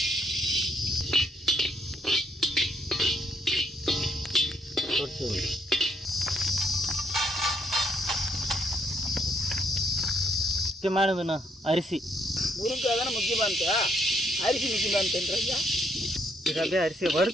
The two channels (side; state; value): both; normal; correlation 0.72